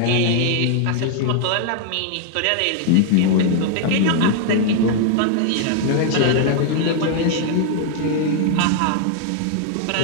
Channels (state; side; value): different; both; correlation 0.00